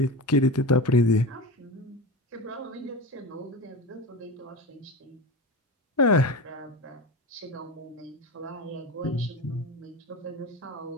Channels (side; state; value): both; normal; correlation 0.25